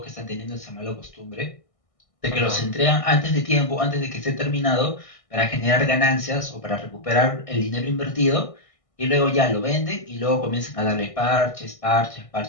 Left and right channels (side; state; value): right; late; 1.6 ms